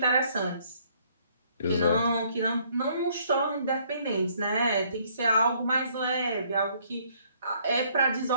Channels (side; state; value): both; inverted; correlation -0.64